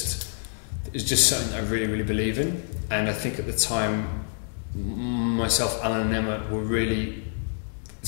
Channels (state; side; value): silent; right; digital silence